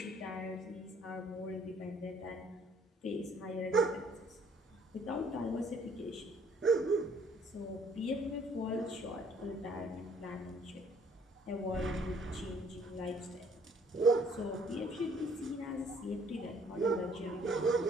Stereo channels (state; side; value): normal; both; correlation 0.61